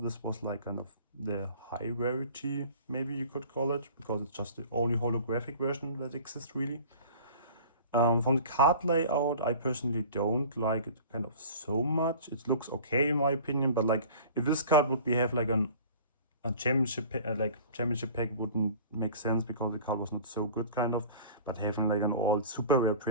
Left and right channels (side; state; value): both; inverted; correlation -0.43